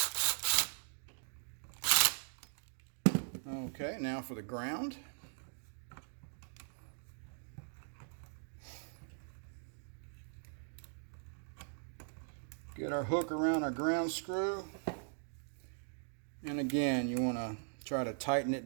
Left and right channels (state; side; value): silent; left; digital silence